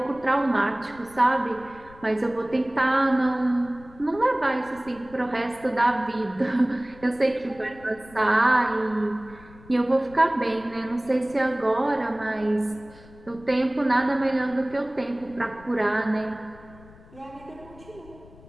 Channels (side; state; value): left; noise; rumble, 22 dB below the sound